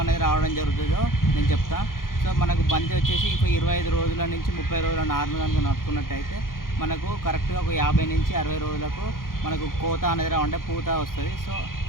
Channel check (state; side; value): late; right; 0.91 ms